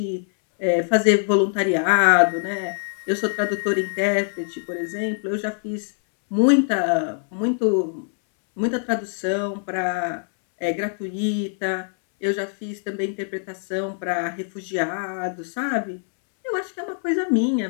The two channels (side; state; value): right; silent; 63 dB below the other